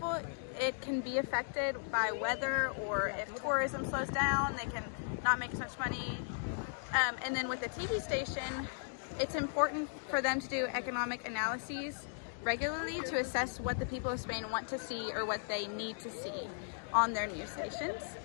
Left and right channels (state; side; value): silent; right; digital silence